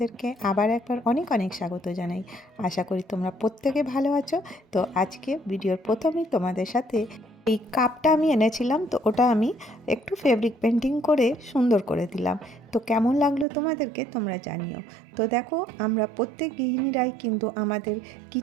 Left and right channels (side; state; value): left; drops out; at 13.5 s